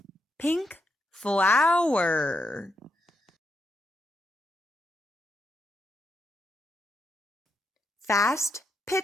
Pink flower. Fast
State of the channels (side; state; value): both; normal; correlation 0.82